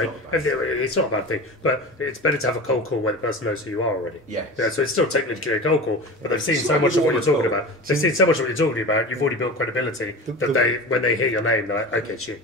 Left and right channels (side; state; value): both; normal; correlation 0.32